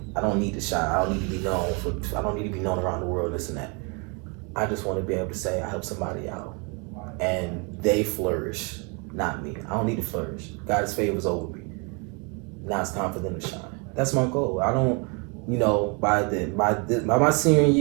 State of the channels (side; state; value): left; quieter; 33.0 dB